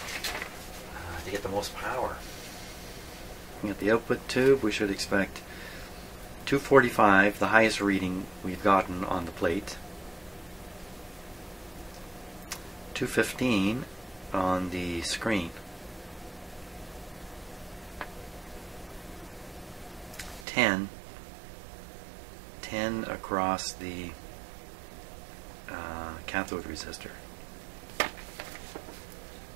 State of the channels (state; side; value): drops out; left; at 20.5 s